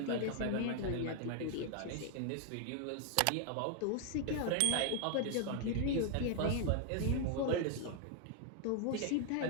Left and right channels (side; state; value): both; different; correlation 0.00